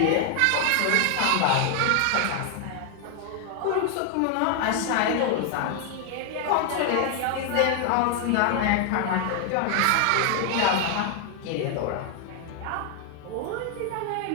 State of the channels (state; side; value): different; both; correlation 0.00